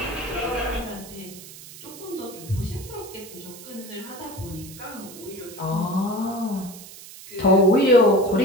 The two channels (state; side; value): noise; right; hiss, 16 dB below the sound